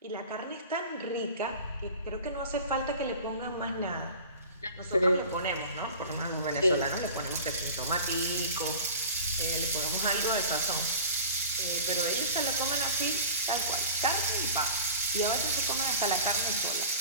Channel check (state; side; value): inverted; both; correlation -0.37